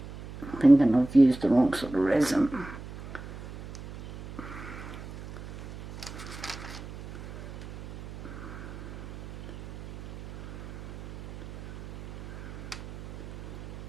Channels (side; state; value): right; noise; hum, 14 dB below the sound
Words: Thinking I've used the wrong sort of resin.